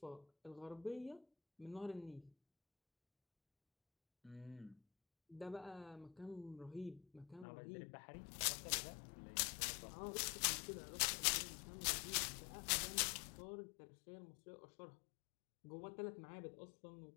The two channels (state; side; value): drops out; right; at 7.5 s